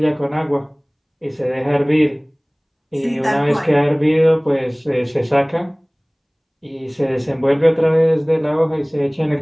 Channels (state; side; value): identical; both; correlation 1.00